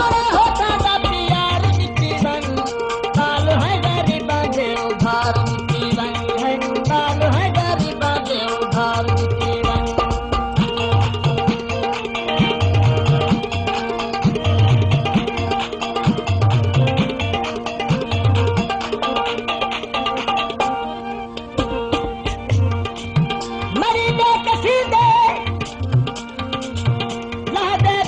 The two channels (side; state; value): both; identical; correlation 1.00